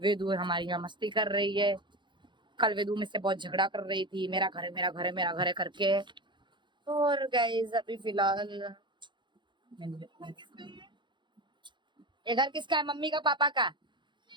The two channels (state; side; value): late; left; 0.23 ms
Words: हमारी यहाँ मस्ती कर रही है। कल वेदू में से बहुत झगड़ा कर रही थी, मेरा घर है, मेरा घर है, मेरा घर है करके। और गाइस अभी फिलहाल ये घर किसका है? मम्मी का, पापा का?